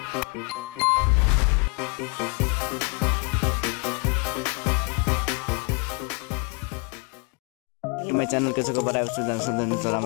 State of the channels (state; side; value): quieter; right; 33.0 dB